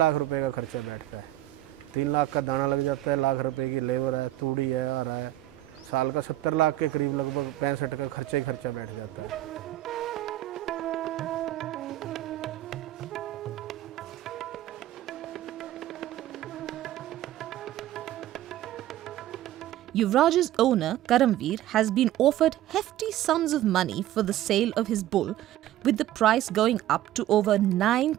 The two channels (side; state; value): left; quieter; 13.9 dB